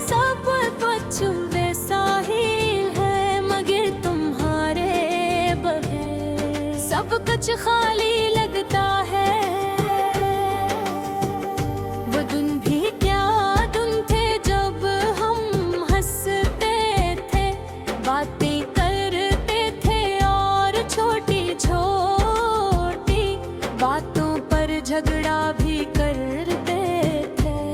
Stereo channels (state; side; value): identical; both; correlation 1.00